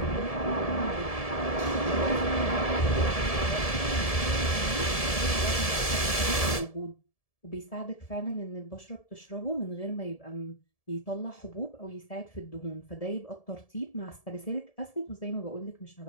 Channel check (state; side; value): late; right; 1.7 ms